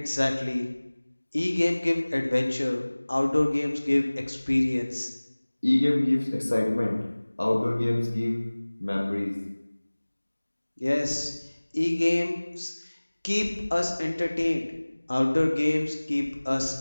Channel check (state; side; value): inverted; both; correlation -1.00